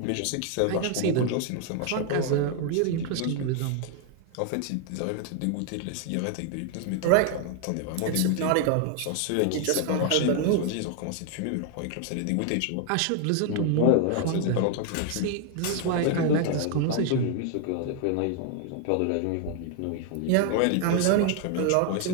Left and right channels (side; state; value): both; different; correlation 0.00